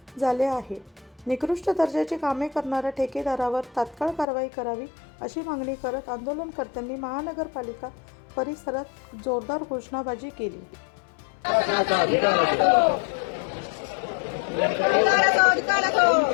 झाले आहे. निकृष्ट दर्जाची कामे करणाऱ्या ठेकेदारावर तात्काळ कारवाई करावी अशी मागणी करत आंदोलनकर्त्यांनी महानगरपालिका परिसरात जोरदार घोषणाबाजी केली.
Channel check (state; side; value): drops out; right; at 4.2 s